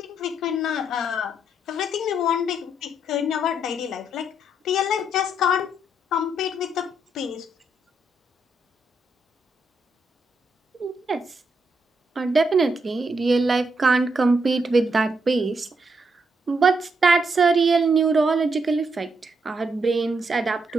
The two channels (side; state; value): both; normal; correlation 0.78